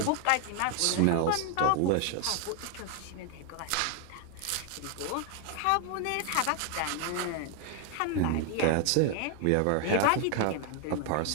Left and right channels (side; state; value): both; different; correlation 0.01